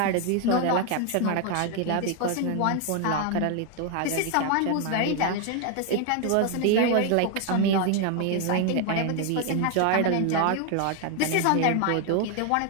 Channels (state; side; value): different; both; correlation 0.00